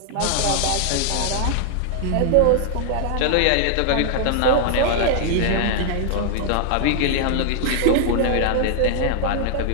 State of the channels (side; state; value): both; different; correlation 0.00